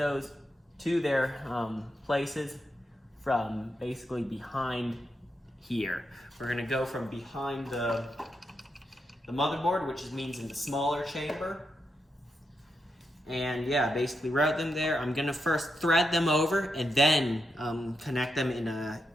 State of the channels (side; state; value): both; normal; correlation 0.84